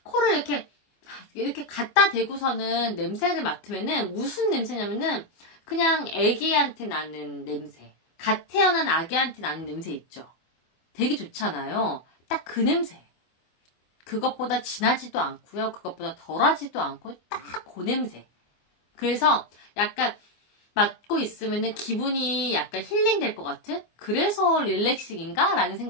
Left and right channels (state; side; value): late; right; 24 ms